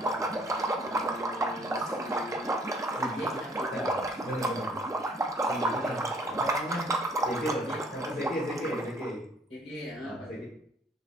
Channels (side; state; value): both; normal; correlation 0.60